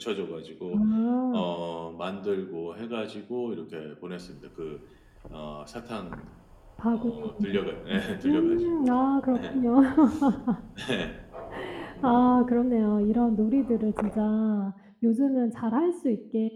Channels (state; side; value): identical; both; correlation 1.00